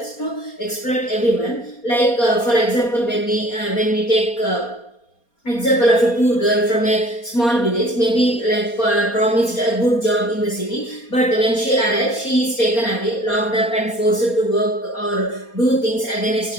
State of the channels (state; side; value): late; right; 4.3 ms